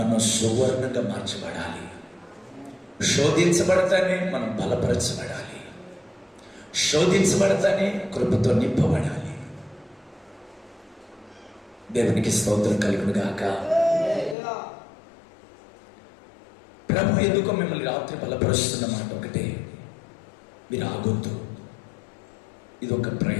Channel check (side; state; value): right; drops out; at 14.4 s